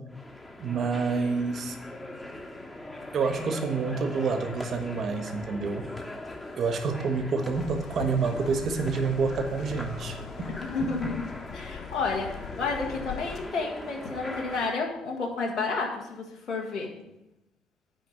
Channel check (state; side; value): normal; both; correlation 0.61